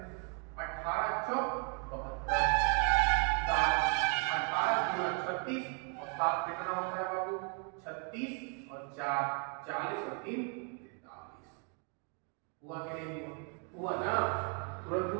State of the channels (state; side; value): quieter; left; 34.8 dB